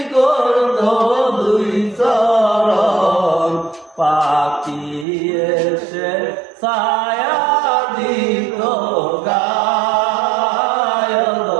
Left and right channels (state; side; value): drops out; left; at 5.1 s